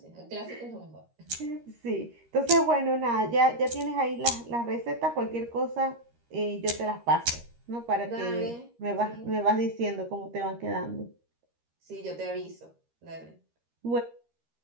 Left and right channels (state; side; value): late; left; 13 ms